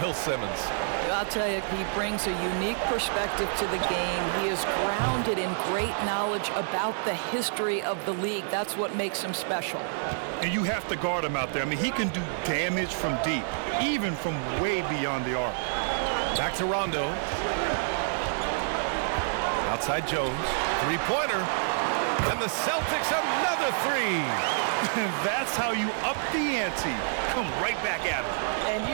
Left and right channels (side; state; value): left; silent; 59 dB below the other